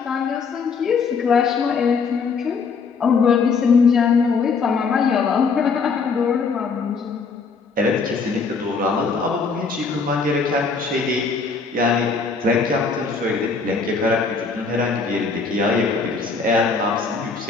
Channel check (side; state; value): right; quieter; 4.9 dB